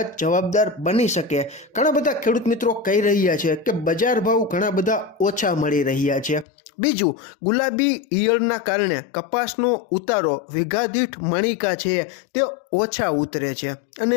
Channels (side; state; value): right; drops out; at 6.5 s